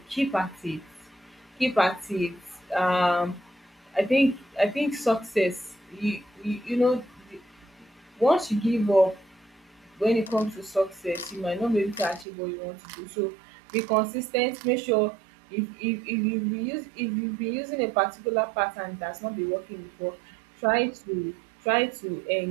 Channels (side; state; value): left; drops out; at 12.2 s